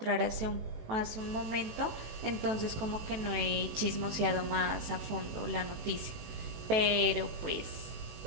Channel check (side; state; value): left; late; 18 ms